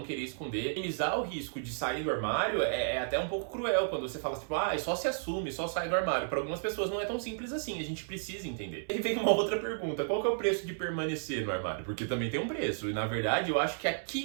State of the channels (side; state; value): left; silent; 56 dB below the other